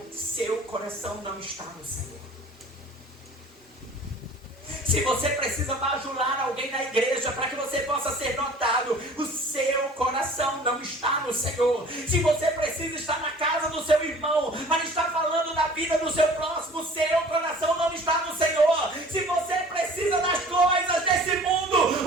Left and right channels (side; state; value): both; normal; correlation 0.47